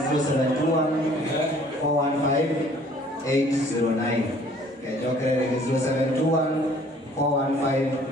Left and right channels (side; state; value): both; normal; correlation 0.56